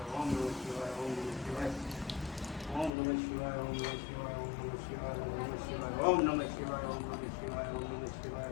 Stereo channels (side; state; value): right; drops out; at 2.9 s